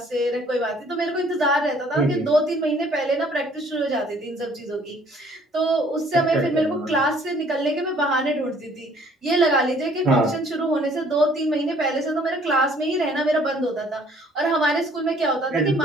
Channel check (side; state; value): both; normal; correlation 0.58